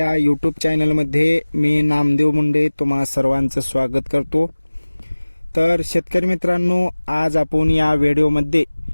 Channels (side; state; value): both; inverted; correlation -1.00